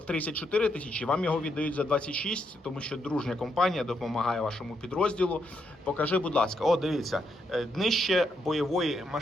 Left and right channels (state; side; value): normal; both; correlation 0.79